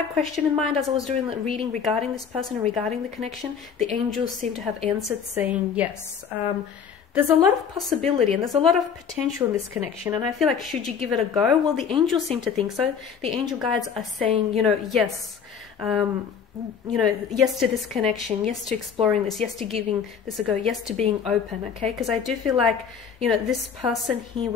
question in mind as I was doing the reading regarding this person and regarding the connection, the angels seem to have answered saying yes. There's a lot of possibility and there's a lot of potential in this connection, and I feel like should you give it a go? Well, the angels seem to think so. The angel guides are saying, you know, yes. Yes to this connection, yes to exploring this, yes to giving this a go, yes to being open, okay? Because I do feel like, you know, this person here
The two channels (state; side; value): quieter; right; 7.0 dB